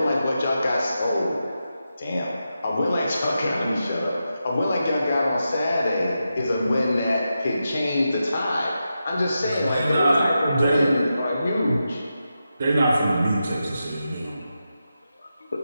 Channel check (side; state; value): both; inverted; correlation -0.89